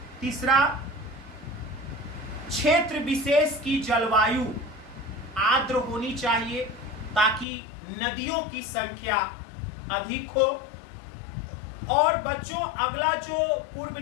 तीसरा, क्षेत्र विशेष की जलवायु आर्द्र होनी चाहिए ताकि नदियों की संख्या अधिक हो। और बच्चों, अगला जो पूर्व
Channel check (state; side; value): drops out; right; at 7.5 s